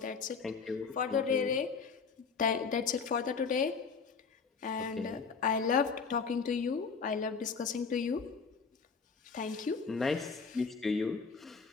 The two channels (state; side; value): quieter; right; 5.4 dB